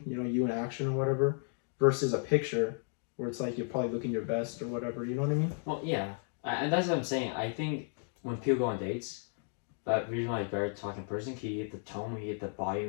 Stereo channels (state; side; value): silent; right; 55 dB below the other